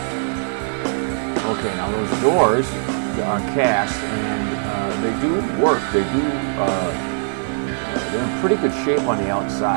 Okay, now those doors are cast, and they do work. They do. They're in pretty good shape on the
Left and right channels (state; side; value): silent; left; digital silence